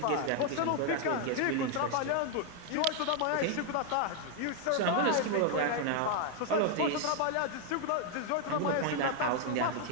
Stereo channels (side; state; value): both; different; correlation 0.01